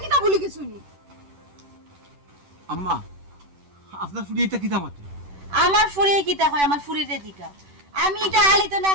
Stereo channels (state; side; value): late; left; 10 ms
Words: কিতা বলি গেছো নি? আম্মা আপনার ফুড়ি এটা কিতা মাতে? আমার ফুরিয়ে কিতা হয়, আমার ফুরিরে দিকা। আমি এটা হালিত না